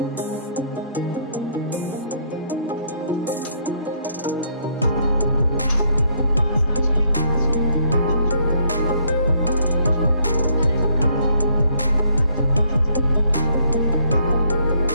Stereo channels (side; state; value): both; inverted; correlation -0.67